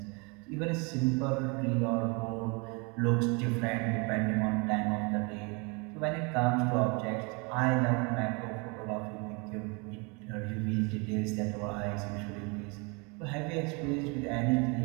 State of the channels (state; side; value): quieter; left; 30.9 dB